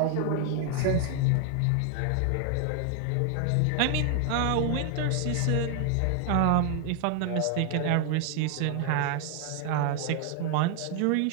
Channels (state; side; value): different; both; correlation 0.00